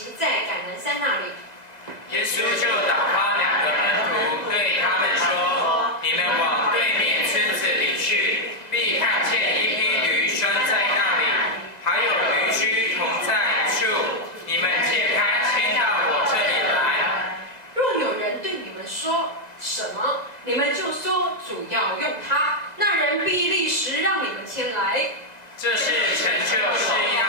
在橄榄山那里。耶稣就打发2个门徒，对他们说：“你们往对面村子里去，必看见一匹驴拴在那里，还有驴驹同在处。你们解开，牵到我这里来。若有人对你们说什么，你们就说主要用它，那人必立时让你们牵来。”这是成就是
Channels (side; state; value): right; late; 2.0 ms